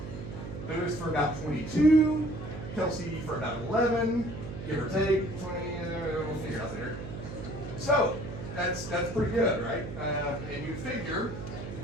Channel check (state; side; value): noise; right; hum, 8 dB below the sound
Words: Lewis for about 22, Kelsey for about 11, give or take, 20, we'll figure it out later. So, that's pretty good, right? And you figure,